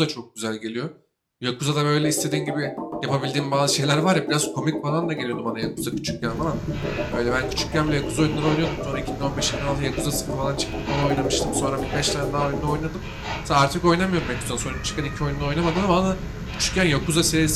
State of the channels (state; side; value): identical; both; correlation 1.00